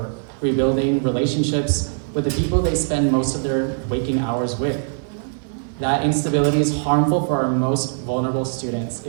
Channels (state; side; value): silent; left; 59 dB below the other